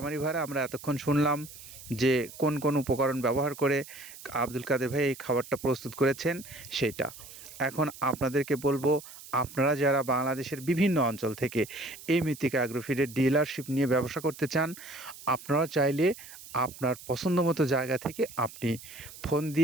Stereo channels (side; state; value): right; noise; hiss, 16 dB below the sound